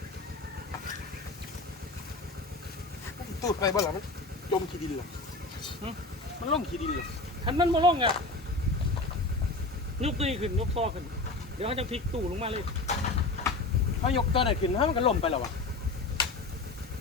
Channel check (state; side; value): quieter; right; 3.3 dB